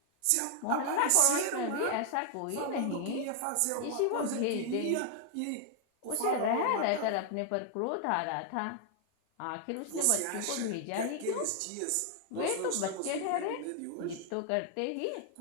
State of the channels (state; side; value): different; both; correlation 0.00